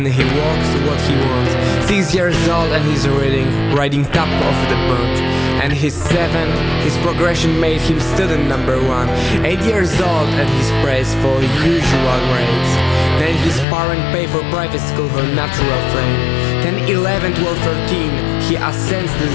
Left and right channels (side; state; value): right; drops out; at 13.7 s